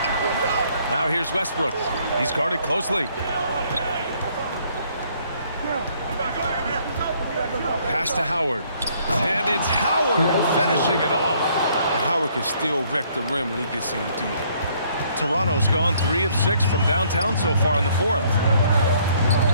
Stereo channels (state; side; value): inverted; both; correlation -0.64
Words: Now here's Westbrook. He's guarded closely. Pass to Howard. And it's Howard finishing it off. And Howard can still wreck the rim when he gets in deep. Toronto's gone 3 of 6 from downtown so far in the 4th.